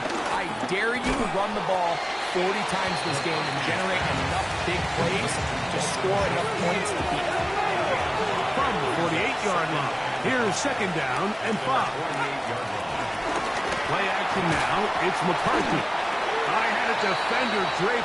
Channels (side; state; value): both; identical; correlation 1.00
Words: I dare you to run the ball 40 times this game and generate enough big plays to score enough points to beat them. From the 48-yard line, here's second down and 5. Play action now, it's McCarthy. I had a defender